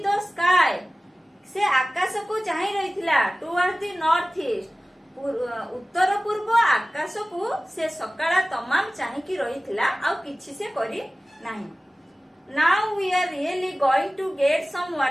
the sky ସେ ଆକାଶକୁ ଚାହିଁ ରହିଥିଲା। towards the north east ଉତ୍ତର ପୂର୍ବ ଆକାଶକୁ ସେ ସକାଳ ତମାମ ଚାହିଁକି ରହିଥିଲା, ଆଉ କିଛି ସେ କରି ନାହିଁ। now we are really going to get some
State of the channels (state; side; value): normal; both; correlation 0.97